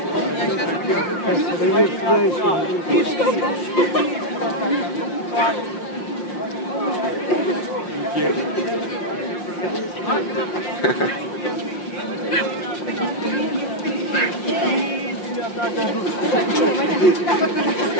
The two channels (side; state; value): right; late; 5.6 ms